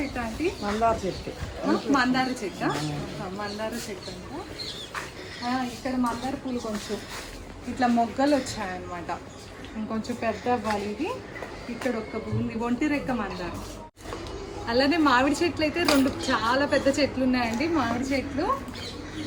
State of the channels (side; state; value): both; identical; correlation 1.00